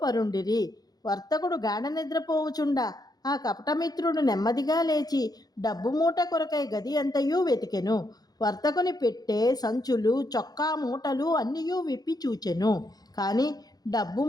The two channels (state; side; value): late; right; 0.19 ms